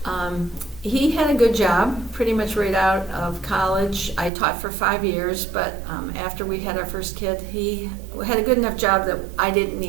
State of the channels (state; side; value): drops out; left; at 4.3 s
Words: He had a good job pretty much right out of college. I taught for 5 years, but after we had our first kid, he had a good enough job that I didn't